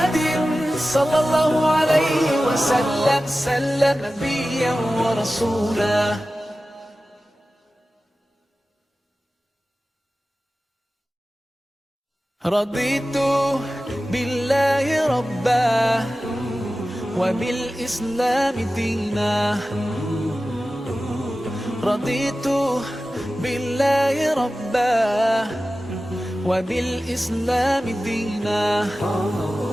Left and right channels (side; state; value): both; normal; correlation 0.95